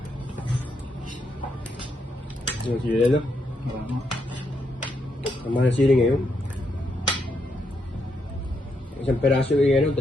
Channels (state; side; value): normal; both; correlation 0.79